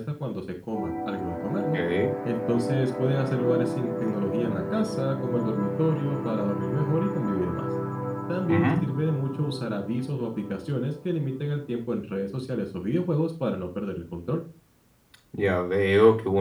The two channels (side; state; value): both; identical; correlation 1.00